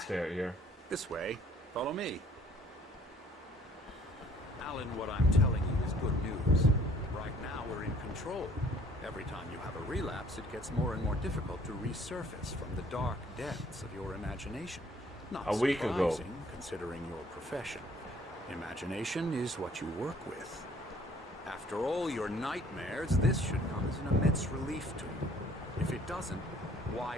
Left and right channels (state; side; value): normal; both; correlation 0.57